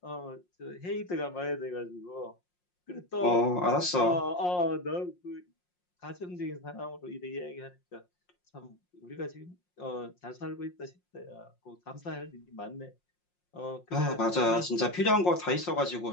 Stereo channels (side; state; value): right; late; 5.6 ms